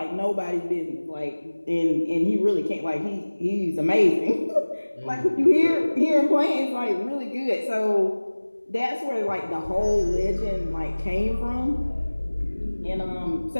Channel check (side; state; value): both; inverted; correlation -1.00